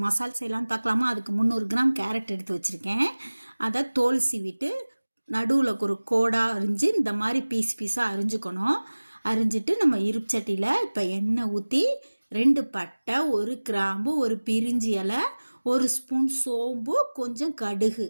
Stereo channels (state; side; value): inverted; both; correlation -1.00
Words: மசால் செய்யலான்னு பார்க்கலாமா? அதுக்கு 300 கிராம் கேரட் எடுத்து வச்சுருக்கேன். அதை தோல் சீவிட்டு நடுவில் ஒரு கோடாக அரிஞ்சு இந்த மாதிரி பீஸாக அரிஞ்சுக்கணும். அரிஞ்சிட்டு நம்ம இருப்பு சட்டியில் இப்போ எண்ணெய் ஊற்றி 2 பட்டை, 1 கிராம்பு, 1 பிரிஞ்சி இலை, 1 ஸ்பூன் சோம்பு, கொஞ்சம் கடுகு